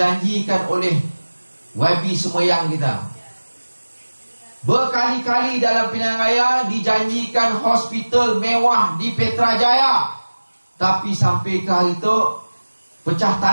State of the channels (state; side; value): inverted; both; correlation -1.00